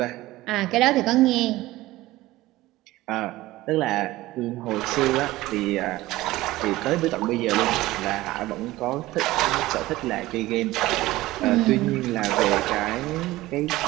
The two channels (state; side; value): quieter; left; 17.7 dB